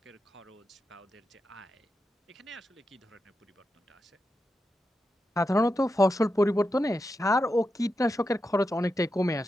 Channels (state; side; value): normal; both; correlation 0.88